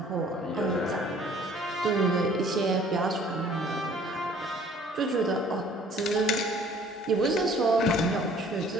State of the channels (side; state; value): both; normal; correlation 0.55